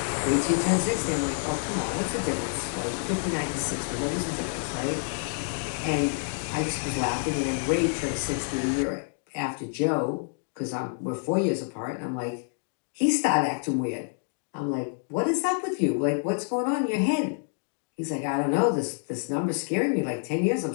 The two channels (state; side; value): silent; right; 56 dB below the other